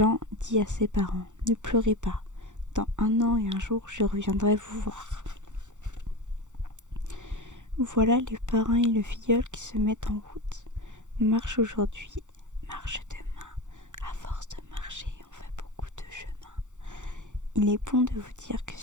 dit à ses parents, « Ne pleurez pas. Dans 1 an et 1 jour, je reviendrai vous voir. » Voilà le parrain et le filleul qui se mettent en route. Marche aujourd'hui, marche demain. À force de marcher, on fait beaucoup de chemin. Il est bon de vous dire que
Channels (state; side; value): late; left; 0.85 ms